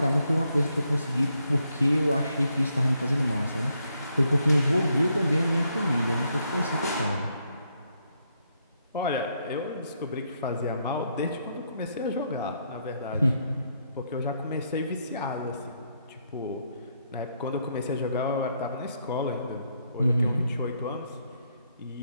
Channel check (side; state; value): both; inverted; correlation -0.76